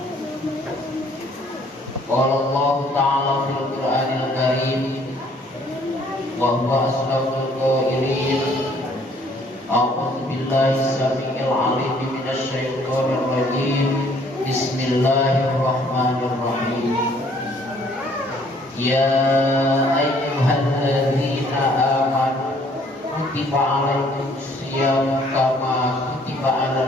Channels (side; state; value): both; normal; correlation 0.61